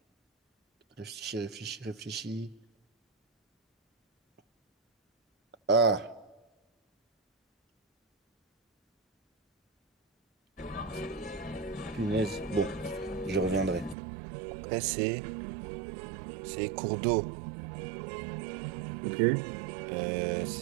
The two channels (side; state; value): left; drops out; at 14.0 s